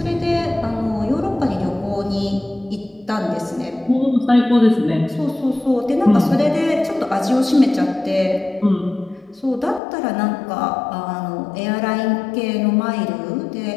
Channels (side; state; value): right; drops out; at 9.8 s